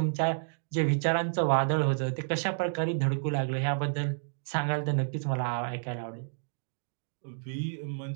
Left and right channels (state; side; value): silent; left; digital silence